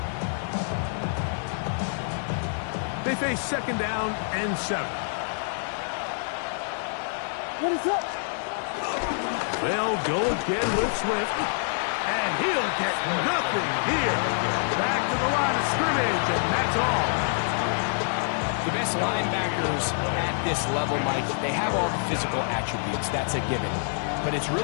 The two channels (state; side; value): silent; right; digital silence